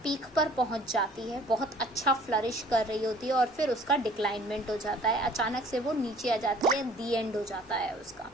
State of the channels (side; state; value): both; normal; correlation 0.53